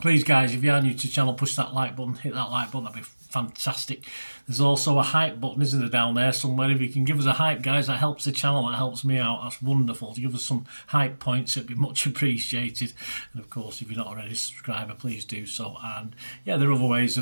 guys, if you are new to the channel, push that like button, hit that like button, that'd be fantastic. There's also a hype button, isn't there, down there somewhere? If you can give us a hype, guys, that helps the channel, that helps me out. That's wonderful. To give us some hype points, it'd be much appreciated. And of course, if you're not already a subscriber, please do so. And yeah, there are other ways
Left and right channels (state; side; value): inverted; both; correlation -1.00